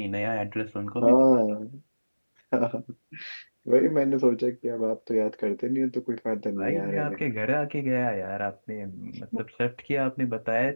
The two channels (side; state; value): both; inverted; correlation -1.00